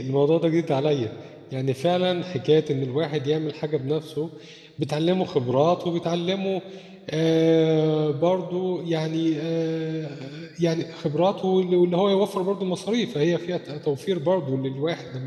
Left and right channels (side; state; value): both; identical; correlation 1.00